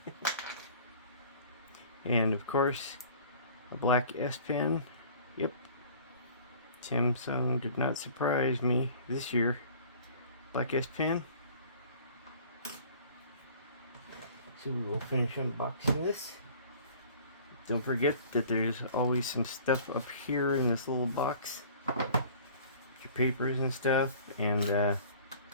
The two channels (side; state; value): both; inverted; correlation -0.48